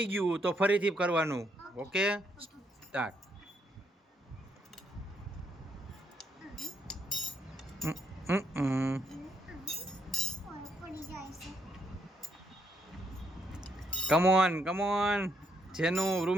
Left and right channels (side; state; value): both; normal; correlation 0.75